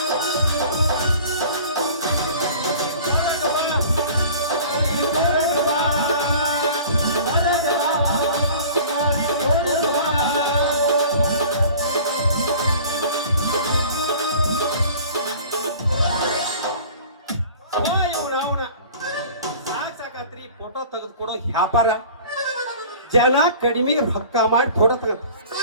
ಫೋಟೋ ತೆಗೆದುಕೊಡೋ ವ್ಯಾಪಾರ ಜನ ಕಡಿಮೆ ರೊಕ್ಕ ಮಾಡಿ ಫೋಟೋ ತಗಂತ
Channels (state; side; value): inverted; both; correlation -0.44